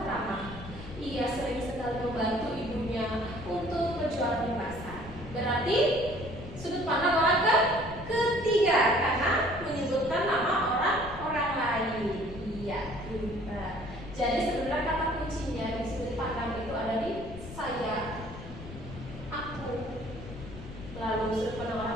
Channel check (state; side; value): noise; left; rumble, 13 dB below the sound